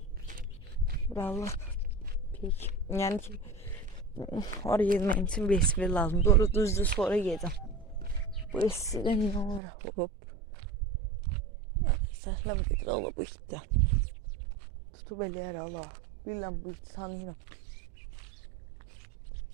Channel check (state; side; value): drops out; left; at 9.6 s